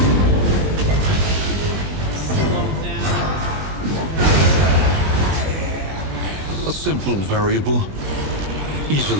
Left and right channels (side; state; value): left; late; 20 ms